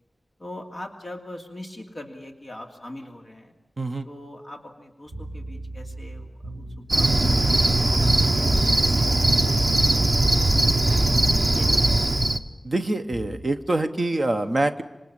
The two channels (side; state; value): both; normal; correlation 0.97